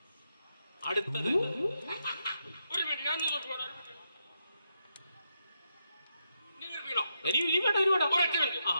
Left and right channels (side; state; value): both; inverted; correlation -0.82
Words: അടുത്തത് ഒരു മിനിറ്റ്, ഞാൻ